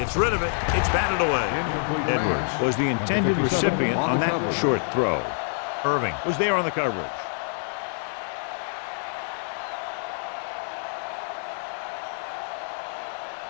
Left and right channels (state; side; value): silent; right; 61 dB below the other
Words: rid of it. It's batted away. Edwards was the intended recipient on that short throw. Irving was there on the coverage.